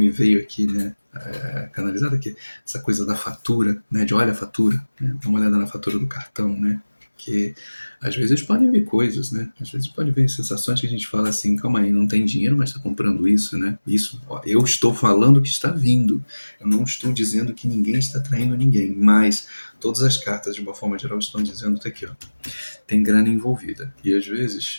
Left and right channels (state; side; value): inverted; both; correlation -1.00